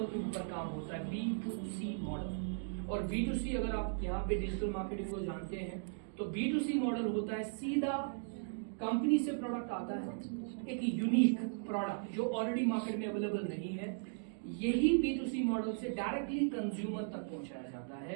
के ऊपर काम होता है, B2C मॉडल. और B2C अगर आप यहाँ पे डिजिटल मार्केटिंग को जानते हैं तो B2C मॉडल होता है सीधा कंपनी से प्रोडक्ट आता है, एक यूनिक प्रोडक्ट जो ऑलरेडी मार्केट में अवेलेबल नहीं है, यही B2C मॉडल से डायरेक्टली कंज्यूमर तक पहुंचाया जाता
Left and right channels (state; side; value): silent; left; digital silence